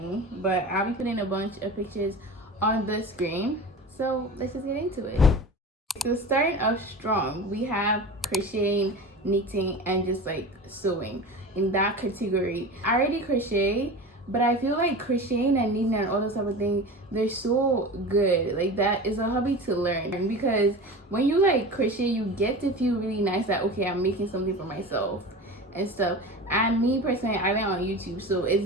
but I'll be putting a bunch of pictures on the screen, so let's just get into it. So starting off strong, we have crocheting, knitting, and just like sewing. In that category, I already crochet, but I feel like crocheting and knitting and all those type of things, they're so good. Like, that is a hobby to learn, because when you like crochet, you get to feel really nice that, okay, I'm making something for myself and stuff. And me personally, I went on YouTube, so it's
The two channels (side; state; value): both; normal; correlation 0.32